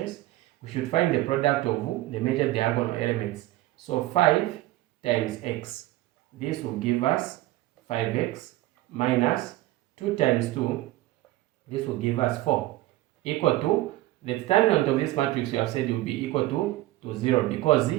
we should find the product of the major diagonal elements. So 5 times x. This will give us 5x minus 2 times 2. This will give us 4. Equal to the determinant of this matrix we have said will be equal to 0 because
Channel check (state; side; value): quieter; left; 16.8 dB